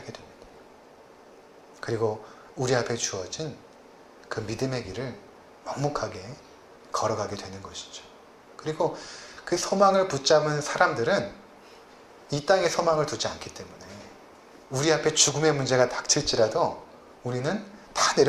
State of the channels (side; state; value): both; identical; correlation 1.00